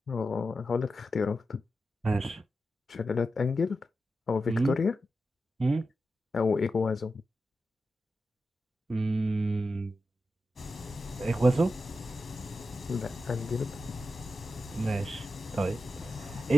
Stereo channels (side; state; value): both; normal; correlation 0.90